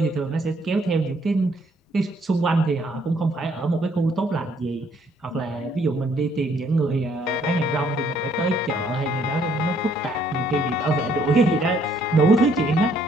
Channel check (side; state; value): both; normal; correlation 0.66